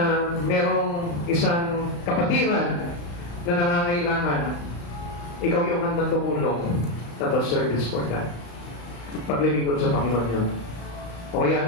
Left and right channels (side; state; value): right; late; 35 ms